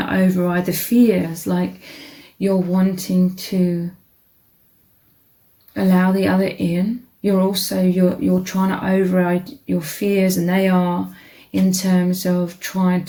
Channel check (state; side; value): identical; both; correlation 1.00